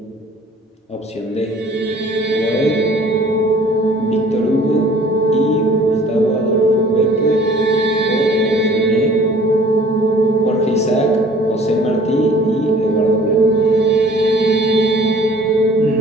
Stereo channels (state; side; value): normal; both; correlation 0.52